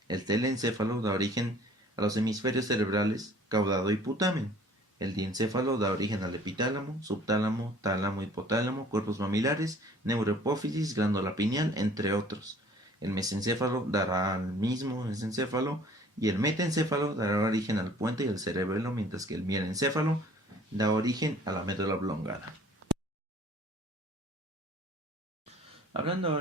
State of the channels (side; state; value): both; normal; correlation 0.52